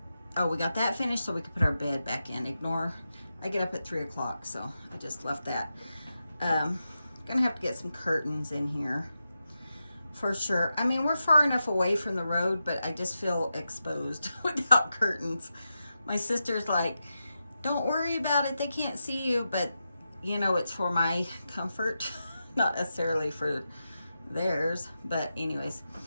oh, we got that finished so we could put our bed back in. Ignore, I get up at 3 o'clock, so I just left that. Gonna have to get some curtains in here for sure. I mean, we're far enough away from the road, but I just feel exposed without curtains. My sister's like, don't worry about it, they can't see you, but you know, it's for my comfort, not necessarily for theirs. But anyways,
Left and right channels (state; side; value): inverted; both; correlation -0.89